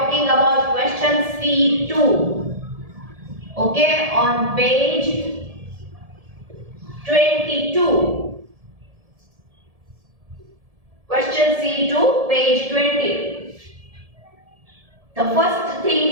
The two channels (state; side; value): late; left; 1.7 ms